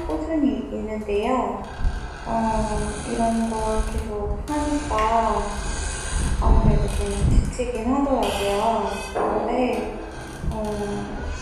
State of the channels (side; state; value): both; identical; correlation 1.00